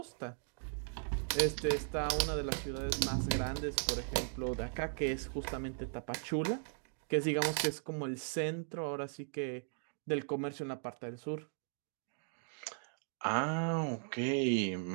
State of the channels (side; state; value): left; silent; digital silence